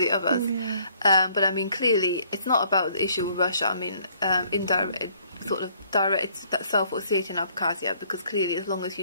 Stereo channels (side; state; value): both; inverted; correlation -0.63